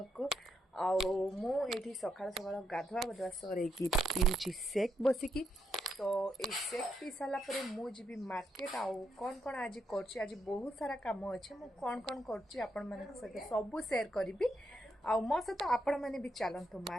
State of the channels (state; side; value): normal; both; correlation 0.79